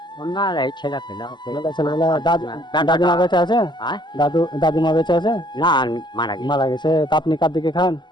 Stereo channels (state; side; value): late; right; 0.21 ms